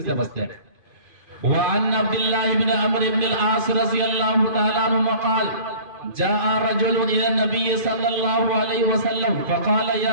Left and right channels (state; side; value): late; left; 2.5 ms